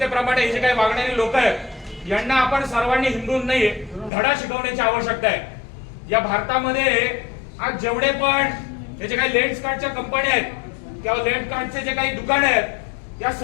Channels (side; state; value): right; drops out; at 4.1 s